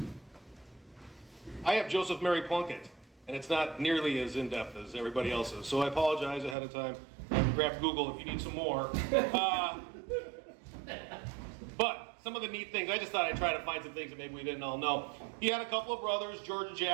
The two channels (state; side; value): drops out; left; at 6.6 s